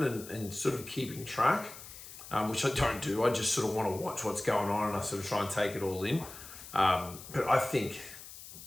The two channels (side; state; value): left; noise; hiss, 14 dB below the sound